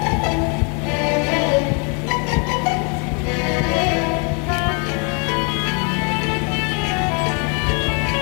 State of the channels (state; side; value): quieter; right; 35.9 dB